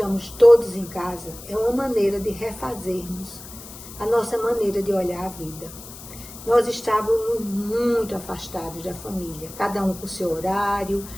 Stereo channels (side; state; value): left; noise; hiss, 15 dB below the sound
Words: todos em casa, é uma maneira de refazermos a nossa maneira de olhar a vida. Nós estávamos muito afastados da família, cada um com o seu horário,